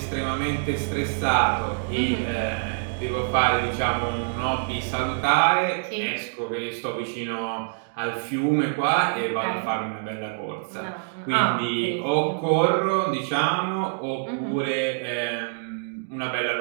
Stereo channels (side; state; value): left; silent; digital silence